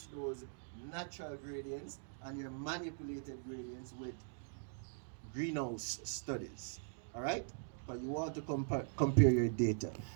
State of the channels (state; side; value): silent; left; digital silence